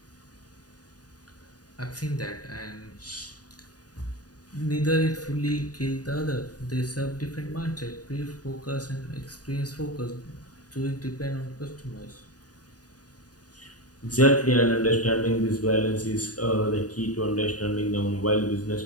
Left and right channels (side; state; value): right; late; 0.68 ms